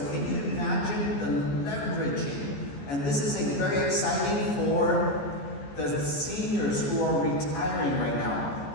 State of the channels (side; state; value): right; late; 14 ms